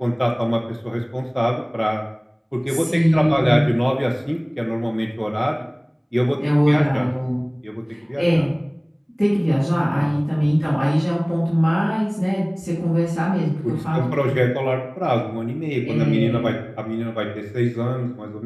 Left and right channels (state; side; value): identical; both; correlation 1.00